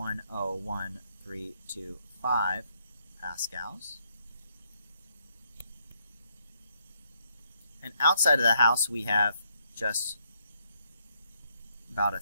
pascals. And outside of the house, we have just about a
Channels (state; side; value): inverted; both; correlation -0.74